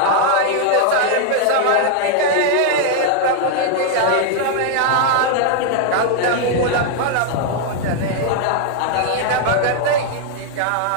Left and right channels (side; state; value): both; different; correlation 0.00